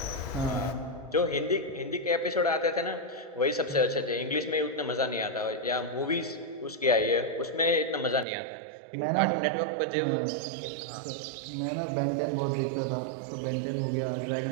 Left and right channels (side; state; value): left; drops out; at 8.2 s